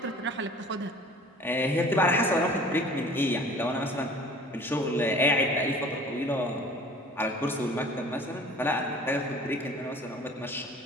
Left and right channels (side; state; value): both; normal; correlation 0.46